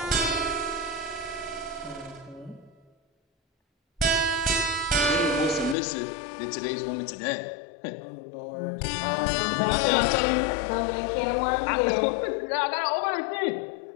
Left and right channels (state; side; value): drops out; right; at 5.8 s